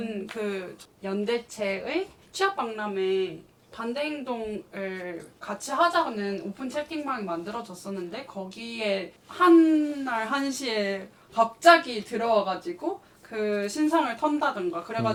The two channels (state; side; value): identical; both; correlation 1.00